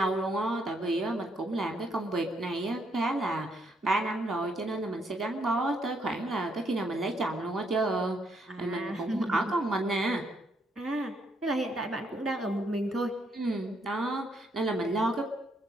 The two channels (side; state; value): both; normal; correlation 0.73